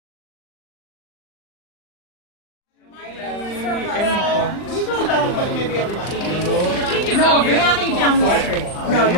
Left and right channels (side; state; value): right; late; 39 ms